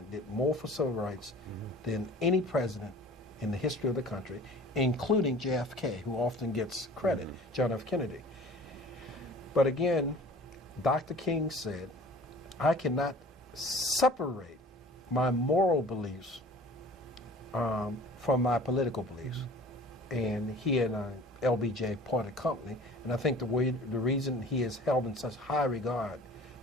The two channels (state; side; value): normal; both; correlation 0.46